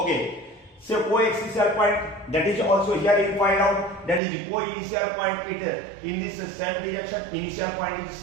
so co-axial point, that is also here you find out, that is co-initial point, it in this same direction, initial point is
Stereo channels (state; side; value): drops out; left; at 4.2 s